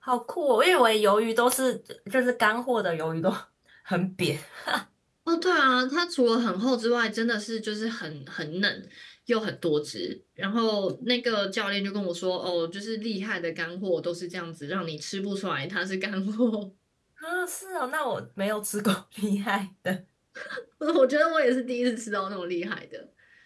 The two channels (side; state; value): both; identical; correlation 1.00